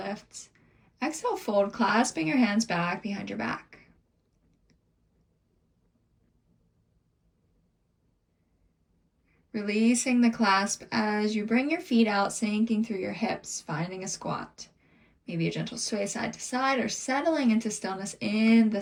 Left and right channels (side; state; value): both; identical; correlation 1.00